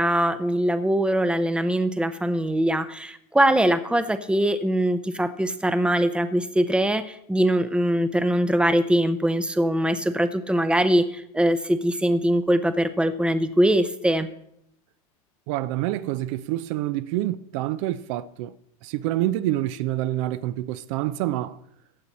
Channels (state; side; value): normal; both; correlation 0.80